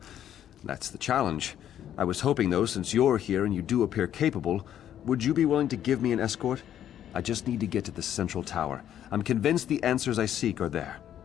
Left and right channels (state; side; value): quieter; right; 10.6 dB